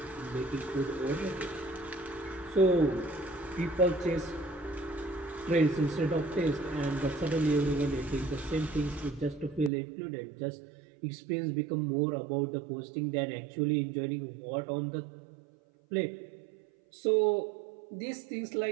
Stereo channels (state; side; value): drops out; left; at 9.7 s